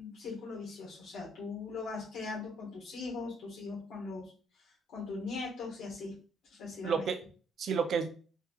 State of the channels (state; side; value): normal; both; correlation 0.67